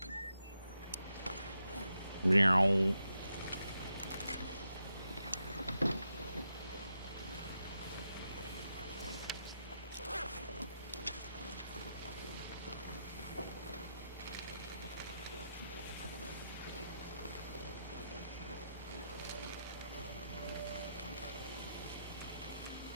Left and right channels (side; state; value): both; inverted; correlation -0.84